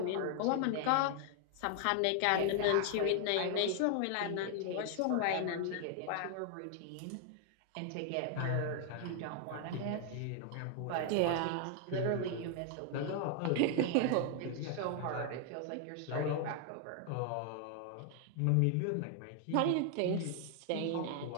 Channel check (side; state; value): both; different; correlation 0.00